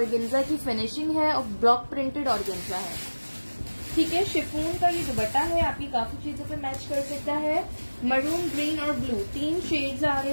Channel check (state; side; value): inverted; both; correlation -1.00